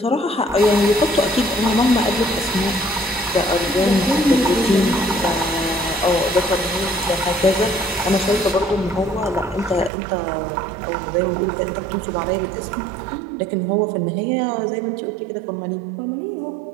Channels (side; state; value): left; drops out; at 9.9 s